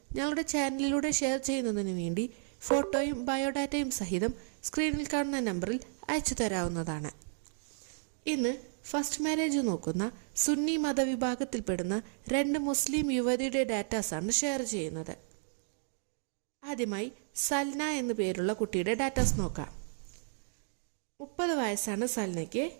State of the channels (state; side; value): silent; left; digital silence